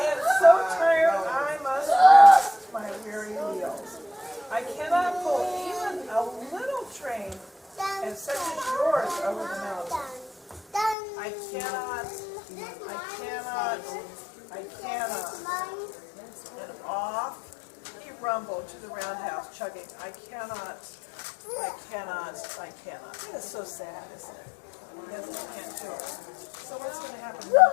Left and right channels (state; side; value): drops out; right; at 11.0 s